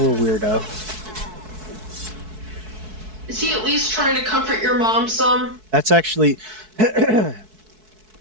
weirdo. Is he at least trying to comfort your mom some? That's actually it's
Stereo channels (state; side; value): late; left; 4.6 ms